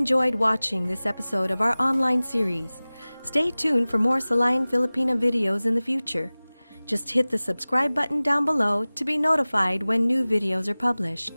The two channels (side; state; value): both; inverted; correlation -0.99